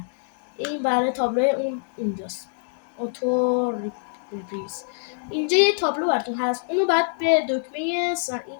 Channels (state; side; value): silent; right; digital silence